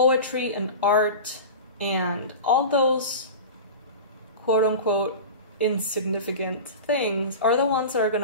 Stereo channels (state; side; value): inverted; both; correlation -0.31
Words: and art and all those quote-unquote insignificant things are the ones that are